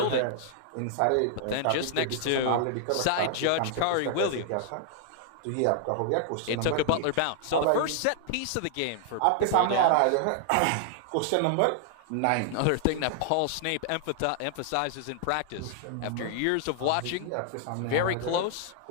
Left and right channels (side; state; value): both; different; correlation -0.01